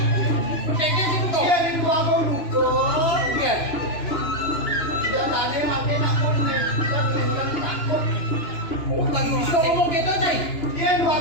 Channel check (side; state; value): right; late; 3.0 ms